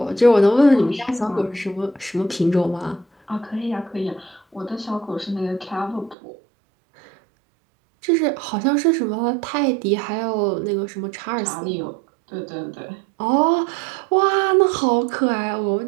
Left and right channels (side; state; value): left; drops out; at 6.2 s